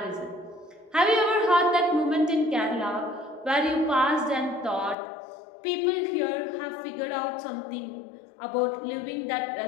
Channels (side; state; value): right; drops out; at 5.0 s